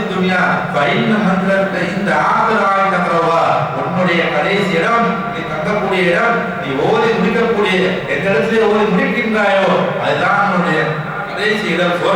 துன்யா ஃபைன்ன மந்திரத்த இந்த ஆகராய் தக்கரவா, உன்னுடைய கடைசி இடம், நீ தங்கக்கூடிய இடம், நீ ஓதி முடிக்கக்கூடிய எந்த இடத்திலே ஓதி முடிக்கின்றாயோ அதுதான் உன்னுடைய கடைசி இடம்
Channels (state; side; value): identical; both; correlation 1.00